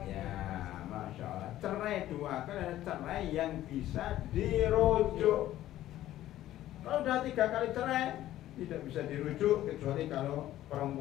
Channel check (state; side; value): quieter; right; 13.7 dB